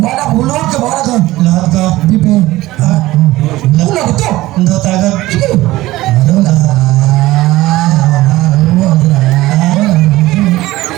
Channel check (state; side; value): quieter; left; 17.4 dB